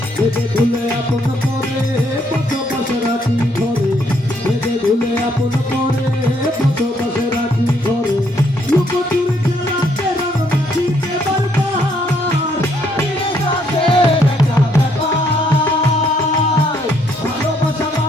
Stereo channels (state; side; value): normal; both; correlation 0.70